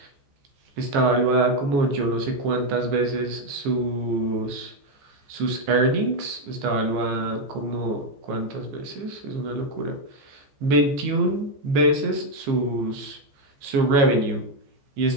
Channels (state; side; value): late; left; 14 ms